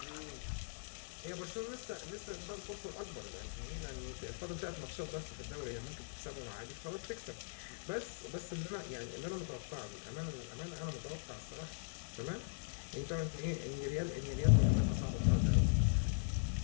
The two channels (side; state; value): right; silent; digital silence